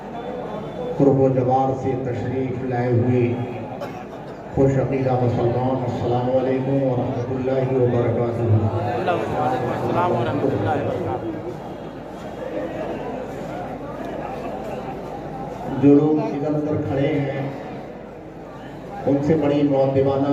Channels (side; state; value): both; identical; correlation 1.00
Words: قرب و جوار سے تشریف لائے ہوئے خوش عقیدہ مسلمان، السلام علیکم ورحمۃ اللہ وبرکاتہ۔ السلام ورحمۃ اللہ وبرکاتہ۔ جو لوگ ادھر ادھر کھڑے ہیں ان سے بڑی